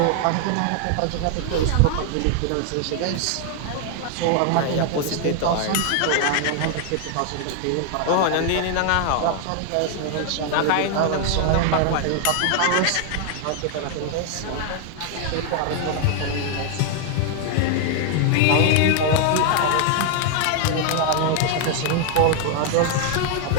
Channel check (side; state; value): both; different; correlation 0.00